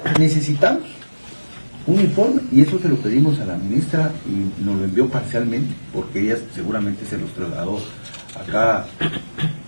necesitamos un informe y eso se lo pedimos a la ministra y nos lo envió parcialmente porque ella seguramente se los trasladó acá.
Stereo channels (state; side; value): inverted; both; correlation -1.00